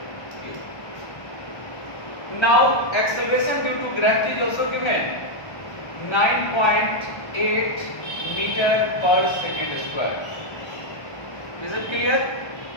cube. Now acceleration due to gravity is also given, 9.8 meter per second square. Is it clear?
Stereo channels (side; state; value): right; late; 1.2 ms